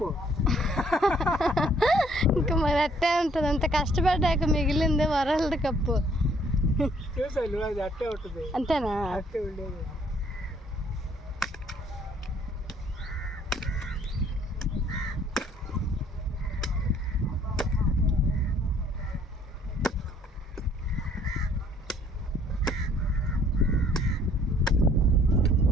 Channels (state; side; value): normal; both; correlation 0.62